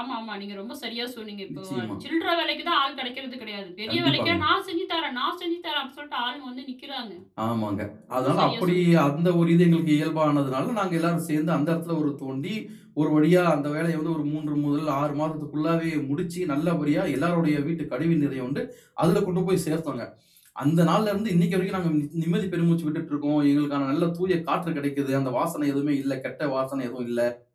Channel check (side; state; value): both; identical; correlation 1.00